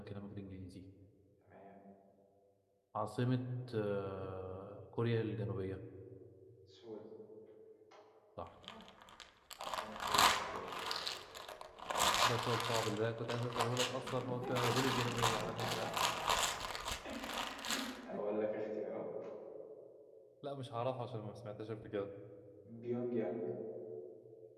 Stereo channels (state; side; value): identical; both; correlation 1.00